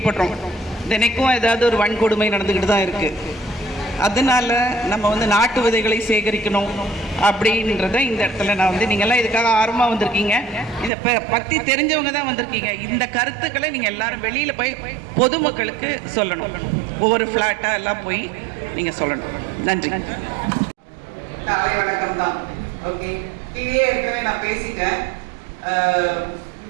தினைக்கும் ஏதாவது ஒரு வன்கொடுமை நடந்துக்கிட்டு தான் இருக்குது. அதனால் நம்ம வந்து நாட்டு விதைகளை சேகரிக்கணும் அப்படின்றத இந்த இடத்துல நான் வந்து, நீங்கள்லாம் இதுக்காக ஆர்வமாக வந்திருக்கீங்க, இதை பற்றி தெரிஞ்சவங்க தான் வந்திருக்கீங்க. இந்த கருத்துக்களை நீங்கள் எல்லாரும் வெளியில் போய் பொதுமக்களுக்கு சொல்லணும். ஒவ்வொரு ஃப்ளாட்டாக எல்லாம் போய் நீங்கள் சொல்லணும். நன்றி. காலை வணக்கம் தான். ஓகே, கீழே இருக்கவே நான் பேசிட்டேன்.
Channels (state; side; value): drops out; left; at 10.9 s